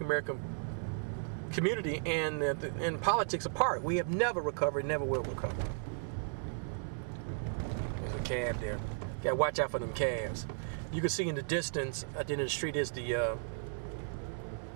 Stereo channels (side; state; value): left; silent; digital silence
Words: American community and politics apart. We have never recovered, never will recover. There's a cab there. Gotta watch out for them cabs. You can see in the distance at the end of the street is the